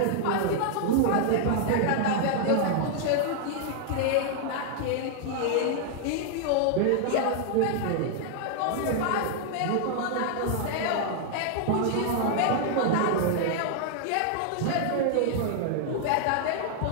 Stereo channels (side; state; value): both; different; correlation -0.01